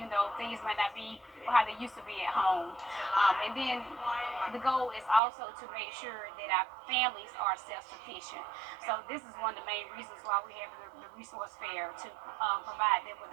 though things might not be how they used to be at home. And then the goal is also to make sure that our families are self-sufficient. So this is one of the main reasons why we have the resource fair, to provide them with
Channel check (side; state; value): left; drops out; at 5.2 s